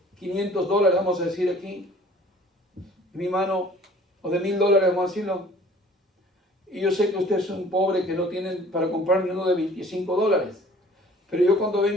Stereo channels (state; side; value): normal; both; correlation 0.51